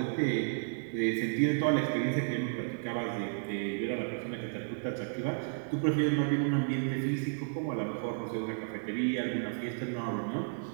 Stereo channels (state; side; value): silent; left; digital silence